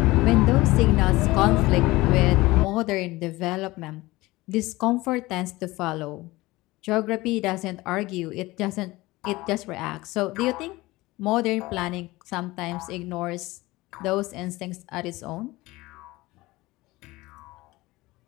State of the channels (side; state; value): right; quieter; 20.0 dB